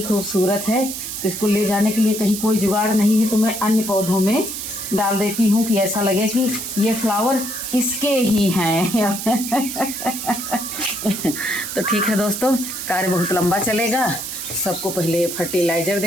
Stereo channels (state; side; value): noise; right; hiss, 6 dB below the sound